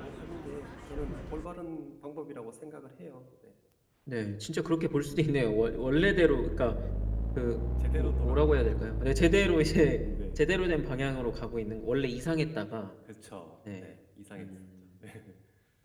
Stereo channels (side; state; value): both; identical; correlation 1.00